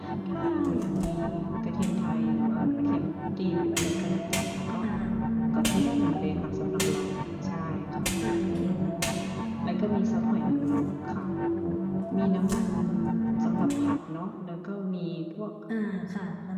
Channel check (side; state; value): both; identical; correlation 1.00